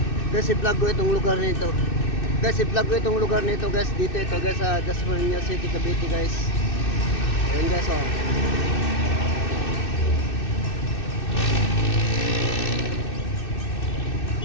Guys, i-vlog ko itong lugar nito. Guys, i-vlog ko itong lugar nito guys. Dito ito guys sa Dasmariñas City, Cavite guys. Ayan guys oh.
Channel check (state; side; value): late; right; 2.6 ms